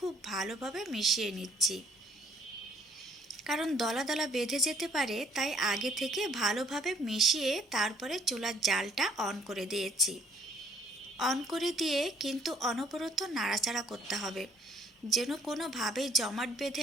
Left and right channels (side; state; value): both; normal; correlation 0.61